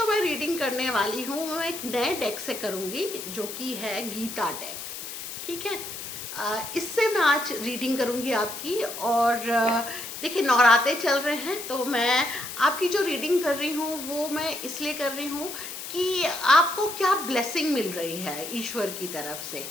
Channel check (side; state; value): left; noise; hiss, 8 dB below the sound